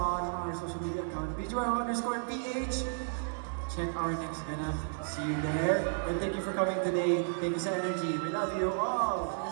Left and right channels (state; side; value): silent; left; digital silence